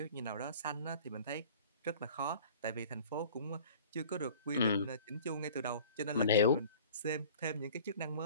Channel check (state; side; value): inverted; both; correlation -0.45